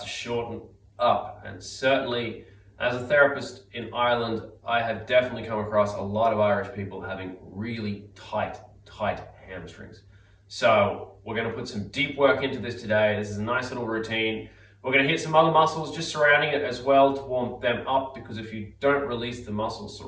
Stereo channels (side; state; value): both; identical; correlation 1.00